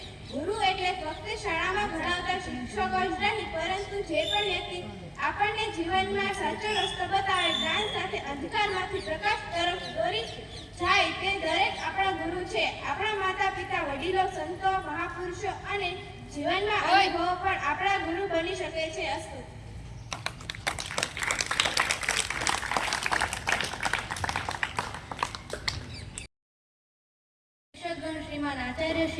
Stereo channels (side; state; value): both; identical; correlation 1.00